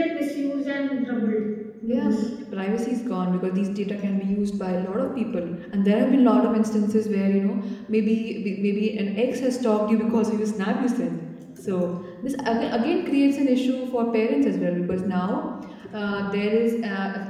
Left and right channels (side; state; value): both; identical; correlation 1.00